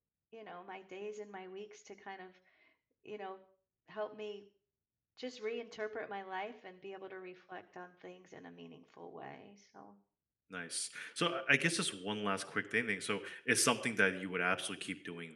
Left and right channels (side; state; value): both; identical; correlation 1.00